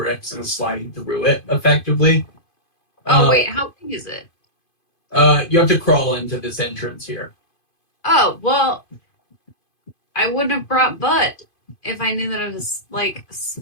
and slide through it effectively. Oh wait, how big is it? You have to crawl into this entrance here. Oh well, I wouldn't have brought Bud if I knew that it was like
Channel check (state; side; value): late; right; 2.5 ms